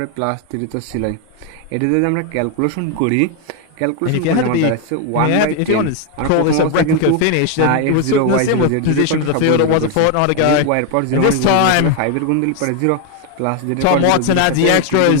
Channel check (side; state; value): both; different; correlation 0.01